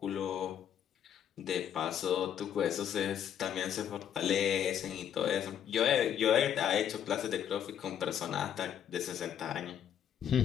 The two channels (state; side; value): quieter; right; 9.4 dB